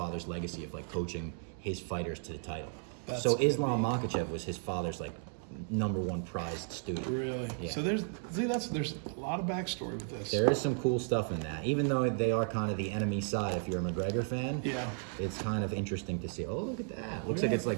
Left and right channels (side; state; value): left; silent; 55 dB below the other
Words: legacy of like coaching his fighters to the title. So Islam Makhachev was his father's like #1 prized student. Really? Yeah. So there's a lot of backstory with this. There is some cool stuff in that. Even though they are kind of the enemy side, if you're a McGregor fan, it's kind of interesting to see. Oh, look at that. Looks like it's